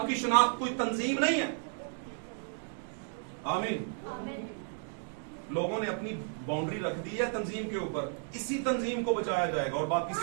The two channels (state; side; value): silent; left; 55 dB below the other